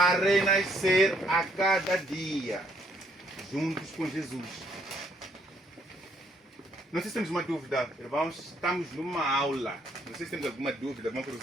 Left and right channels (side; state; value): both; normal; correlation 0.69